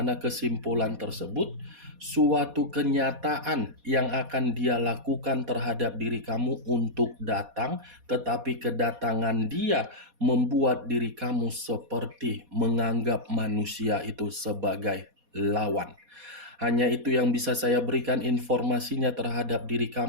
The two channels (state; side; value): late; left; 4.2 ms